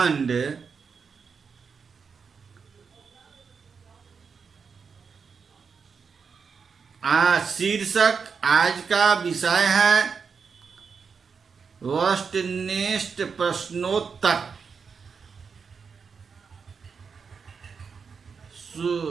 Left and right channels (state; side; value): quieter; left; 5.7 dB